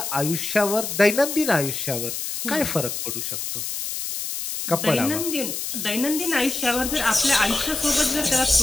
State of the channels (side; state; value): left; noise; hiss, 4 dB below the sound